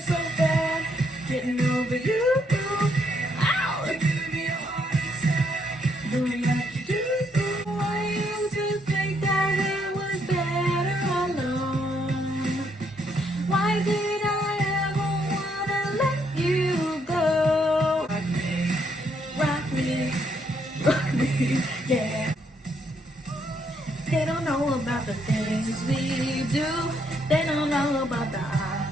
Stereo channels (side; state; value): both; normal; correlation 0.73